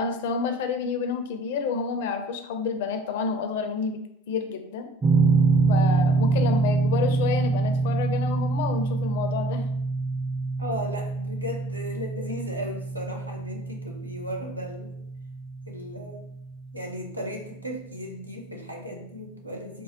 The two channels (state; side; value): normal; both; correlation 0.51